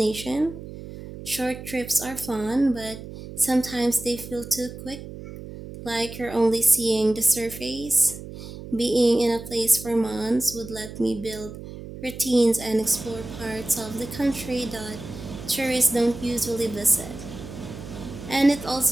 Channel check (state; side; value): noise; right; hum, 12 dB below the sound